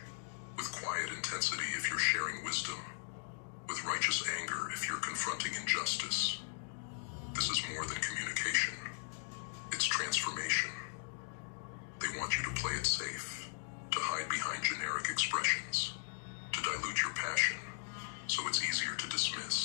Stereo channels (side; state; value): right; silent; digital silence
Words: with quiet intensity if you're sharing wisdom, with righteous anger if you're confronting injustice. This is more than communication. It's transformation. They want you to play it safe, to hide behind generic expressions, to dilute your passion, so it's easier to